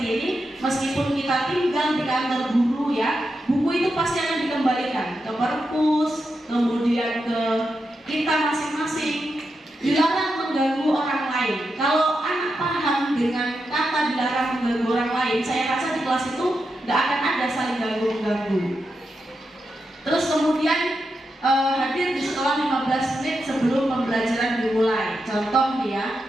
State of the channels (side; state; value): both; normal; correlation 0.87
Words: ini, meskipun kita tinggal di kantor guru, ya, buku itu pasti akan dikembalikan ke perpus, kemudian ke kita masing-masing. Dilarang mengganggu orang lain. Kalau anak paham dengan kata dilarang mengganggu orang lain, saya rasa di kelas itu nggak akan ada saling ganggu-ganggu. Terus kemudian hadir di sekolah 15 menit sebelum pembelajaran dimulai. Contoh, ya,